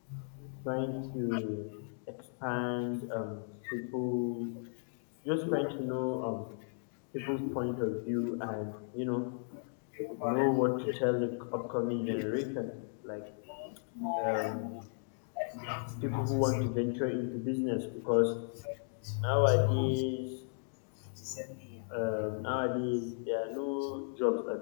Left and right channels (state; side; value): silent; right; digital silence